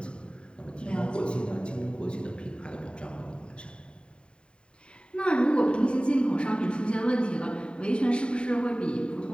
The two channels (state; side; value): late; right; 0.052 ms